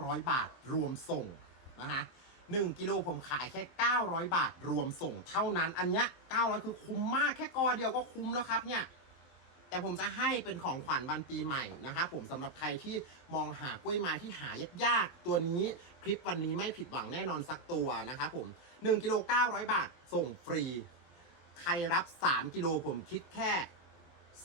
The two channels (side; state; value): right; late; 22 ms